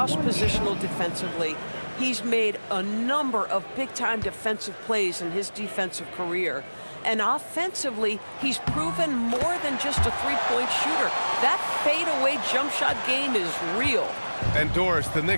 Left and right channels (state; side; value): inverted; both; correlation -1.00